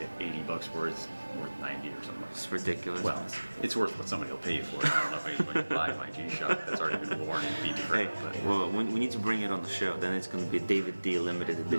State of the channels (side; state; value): both; inverted; correlation -1.00